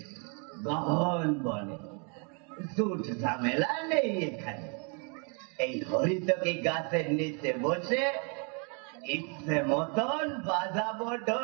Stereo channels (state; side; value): quieter; left; 36.7 dB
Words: গহন বনে, জুট ঝামেলা নেই এখানে। এই হরিতকি গাছের নিচে বসে ইচ্ছে মতন বাজাবো